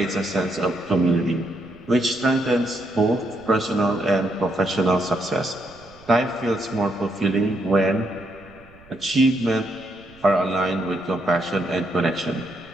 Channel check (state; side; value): noise; right; rumble, 24 dB below the sound